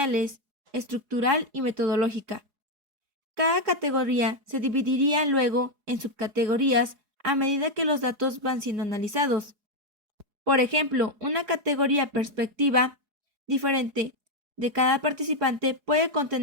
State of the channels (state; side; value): late; left; 4.8 ms